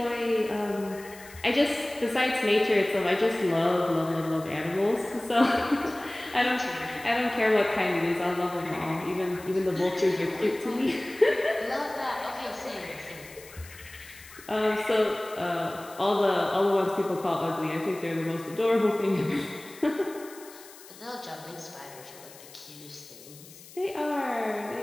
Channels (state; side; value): noise; left; hiss, 19 dB below the sound